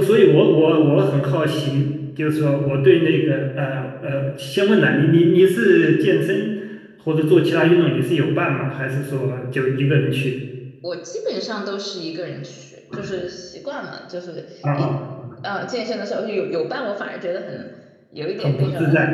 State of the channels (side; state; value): both; identical; correlation 1.00